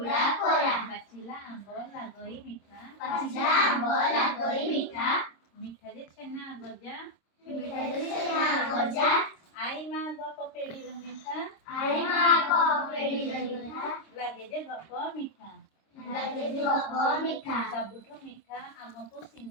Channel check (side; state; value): right; late; 26 ms